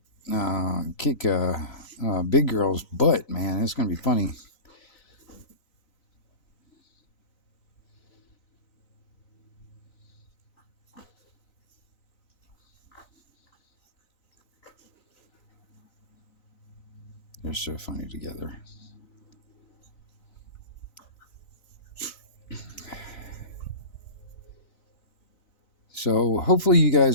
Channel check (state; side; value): late; right; 4.0 ms